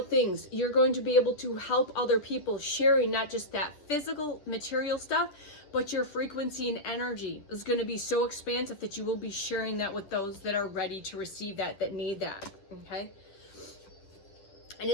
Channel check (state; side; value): late; right; 10 ms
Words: things. You're going to be able to help other people, sharing not just that physical material stuff, but your frequency and energy is going to be so expansive that you will be sharing that with those that are ready to receive that need that, okay? And